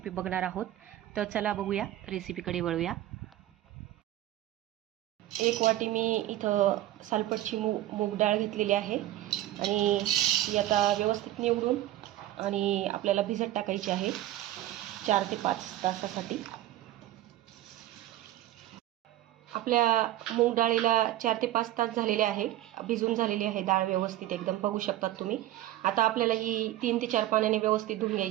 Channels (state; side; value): quieter; left; 14.5 dB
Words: बघणार आहोत। तर चला बघूया, रेसिपीकडे वळूया। एक वाटी मी इथं सालपटची मूग डाळ घेतलेली आहे आणि ती आता व्यवस्थित निवडून आणि आपल्याला भिजत टाकायची आहे 4 ते 5 तासासाठी। आपल्या मूग डाळीला 4 ते 5 तास झालेले आहे, भिजून झालेली आहे डाळ व्यवस्थित एकदम, बघू शकतात तुम्ही। आता आपल्याला ही 3 ते 4 पाण्याने व्यवस्थित धुवून